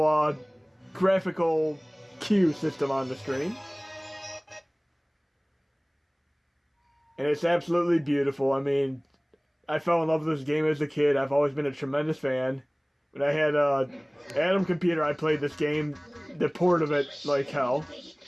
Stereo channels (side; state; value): both; identical; correlation 1.00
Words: graphical cue system on the screen. And it's absolutely beautiful. I mean, I fell in love with this game as a kid. I've always been a tremendous fan. When I had an Atom computer, I played this game, the port of it, like hell.